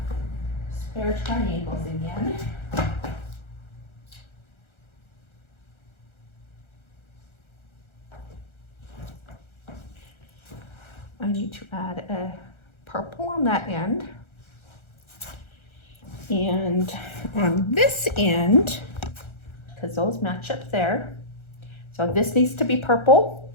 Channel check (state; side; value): late; right; 1.4 ms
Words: spare triangles again. I need to add a purple on that end. And on this end, because those match up there, so this needs to be purple.